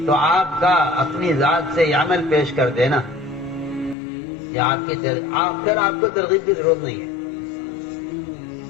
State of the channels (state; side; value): drops out; right; at 4.0 s